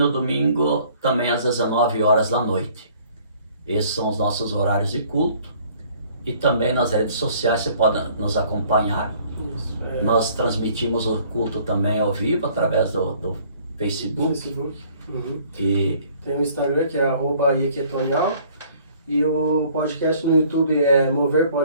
domingo também às 19h da noite. Esses são os nossos horários de culto. E também nas redes sociais você pode nos acompanhar. Nós transmitimos o culto também ao vivo através do Facebook. Uhum. E Tem o Instagram, que é @iequetonial. E o podcast no YouTube é Mover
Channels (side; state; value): both; inverted; correlation -0.57